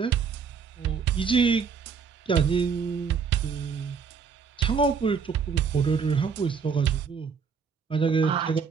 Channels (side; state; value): left; quieter; 6.0 dB